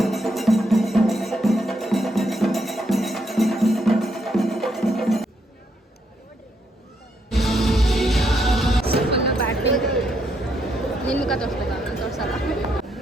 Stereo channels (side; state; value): both; normal; correlation 0.76